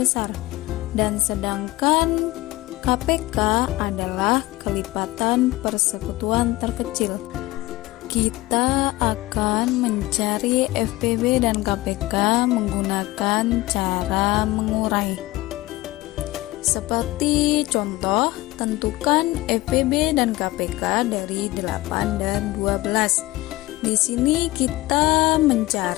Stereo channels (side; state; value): right; quieter; 18.9 dB